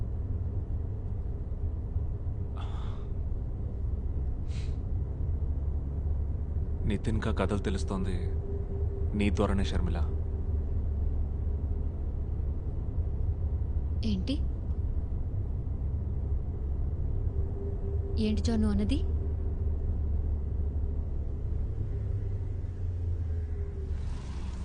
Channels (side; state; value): both; identical; correlation 1.00